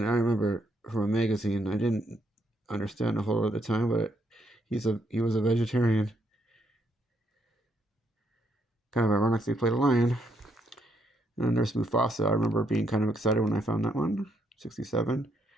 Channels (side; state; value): both; normal; correlation 0.75